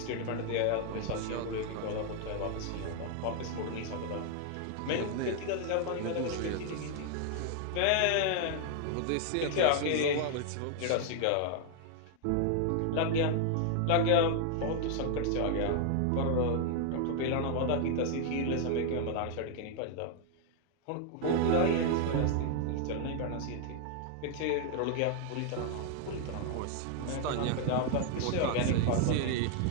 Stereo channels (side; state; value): both; different; correlation 0.00